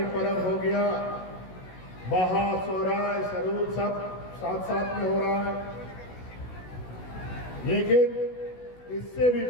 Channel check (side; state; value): right; late; 16 ms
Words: पर्व हो गया, बहा, सोहराय, सरूद सब साथ साथ में हो रहा है। लेकिन इससे भी